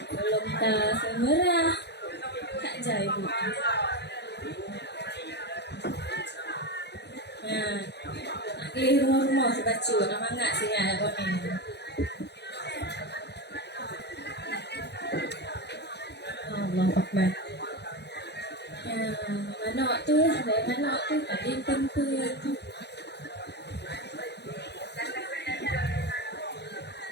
Belum tak semerah. Tak jai bu. Nah, nak rumah-rumah sebacu nak mangat sinyal kau ni. Allah Akbar. Manok tu, dari manok tu tadi tempur.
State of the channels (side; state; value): right; late; 0.49 ms